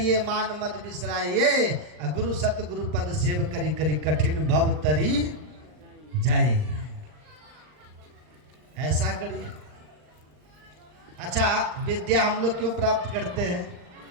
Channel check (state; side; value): late; left; 39 ms